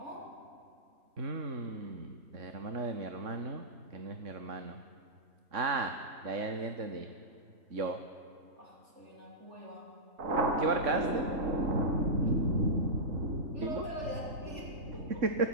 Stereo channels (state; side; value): late; left; 3.6 ms